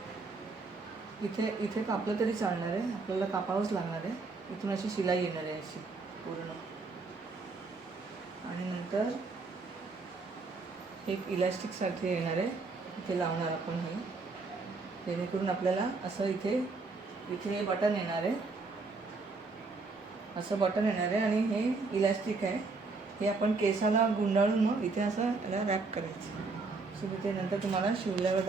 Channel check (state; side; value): quieter; left; 4.0 dB